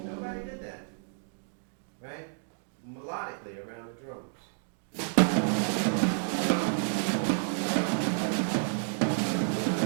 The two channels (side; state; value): left; silent; digital silence